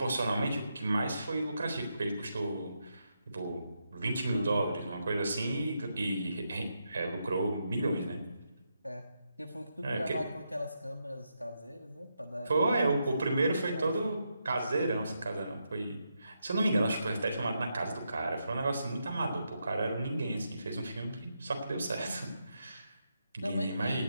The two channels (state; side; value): inverted; both; correlation -0.83